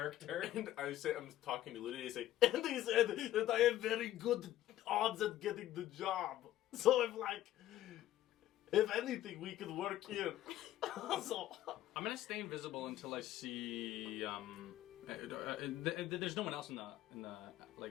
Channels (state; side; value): quieter; right; 13.6 dB